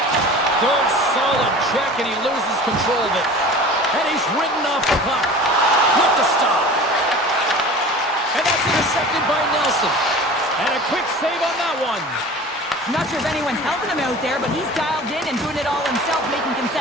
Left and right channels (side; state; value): both; normal; correlation 0.39